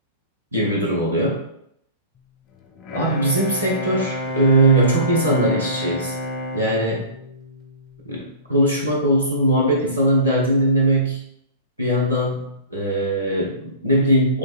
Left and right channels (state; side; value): inverted; both; correlation -0.39